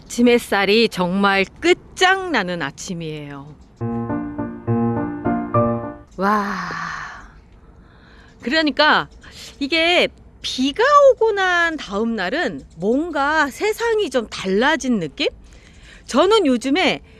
햇살이 정말 끝장나는 아침이에요. 와. 그러니까 이게 비가 오고 난 다음 날은 뭔가 세상이 좀 달라진 느낌? 저는 요즘에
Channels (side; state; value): both; identical; correlation 1.00